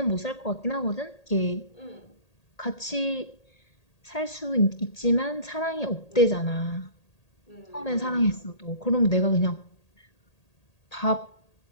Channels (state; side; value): late; right; 1.8 ms